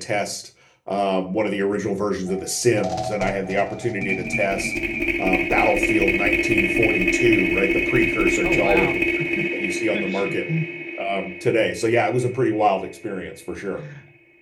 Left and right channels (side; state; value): both; identical; correlation 1.00